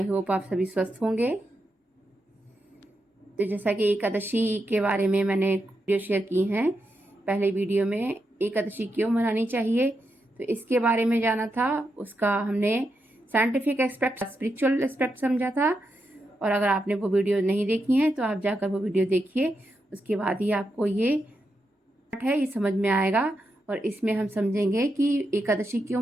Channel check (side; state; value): both; normal; correlation 0.85